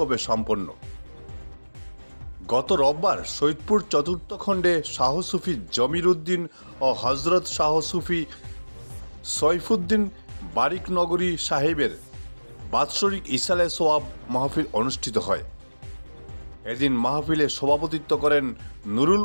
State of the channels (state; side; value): inverted; both; correlation -1.00